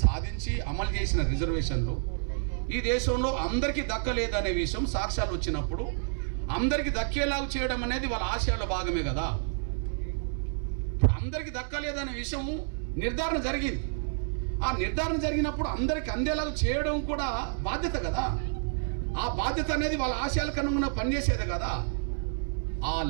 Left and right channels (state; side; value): silent; left; digital silence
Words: సాధించి అమలు చేసిన రిజర్వేషన్లు ఈ దేశంలో అందరికీ దక్కలేదనే విషయం సాక్ష్యాలు వచ్చినప్పుడు అందరికీ దక్కేలాగా చేయడం అనేది వాళ్ళ ఆశయాల్లో భాగమే కదా. ఇప్పుడు అందరికీ దక్కలేదనే విషయం నిర్ధారణ జరిగింది. ఆ నిర్ధారణ జరిగినప్పుడు అందరికీ అందేలాగా చేయడం కూడా బాధ్యత కదా. ఆ బాధ్యత అనేది వాళ్ళ ఆశయాలకు అనుగుణంగా పనిచేసేది కదా.